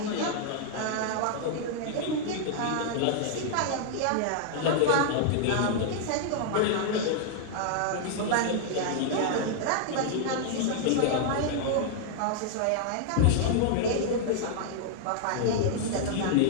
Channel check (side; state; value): both; different; correlation -0.01